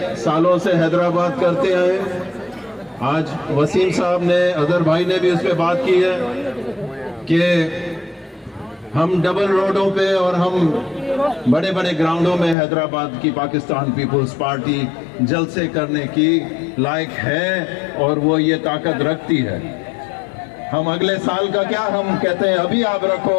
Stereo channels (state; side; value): drops out; right; at 12.6 s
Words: سالوں سے حیدرآباد کرتے ہیں، آج وسیم صاحب نے، اظہر بھائی نے بھی اس پہ بات کی ہے کہ ہم ڈبل روڈوں پہ اور ہم بڑے بڑے گراؤنڈوں میں حیدرآباد کی پاکستان پیپلز پارٹی جلسے کرنے کی لائق ہے اور وہ یہ طاقت رکھتی ہے۔ ہم اگلے سال کا کیا ہم کہتے ہیں، ابھی آپ